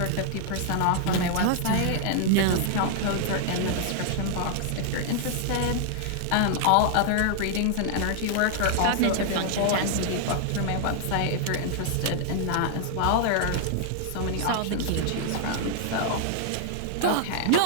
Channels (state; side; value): different; both; correlation -0.01